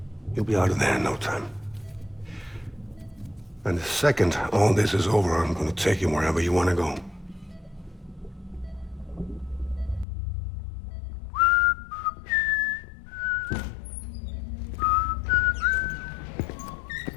You'll be out of there in no time. And the second all this is over, I'm gonna take you wherever you wanna go.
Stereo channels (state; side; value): drops out; right; at 10.1 s